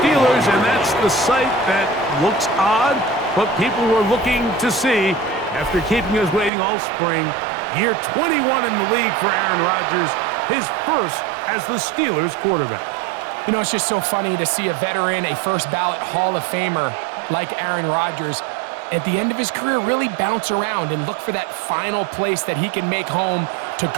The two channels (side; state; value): left; drops out; at 6.5 s